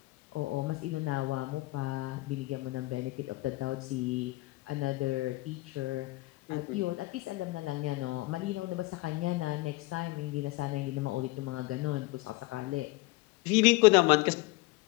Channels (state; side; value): quieter; right; 21.3 dB